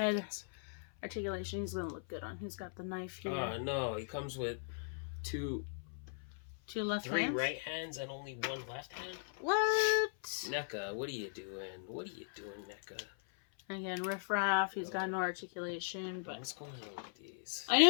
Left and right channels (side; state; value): right; silent; 52 dB below the other